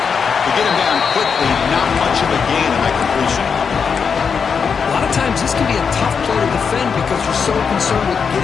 They get him down quickly, not much of a gain on that completion. A lot of times this can be a tough play to defend because you're so concerned with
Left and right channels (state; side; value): quieter; right; 6.1 dB